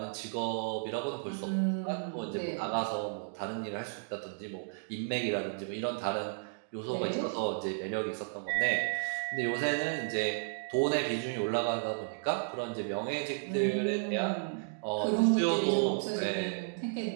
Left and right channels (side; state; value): left; silent; digital silence